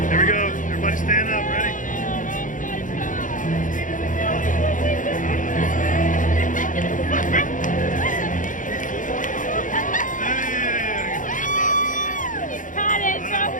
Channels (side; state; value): right; late; 0.38 ms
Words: Here we go. Everybody stand up. Ready?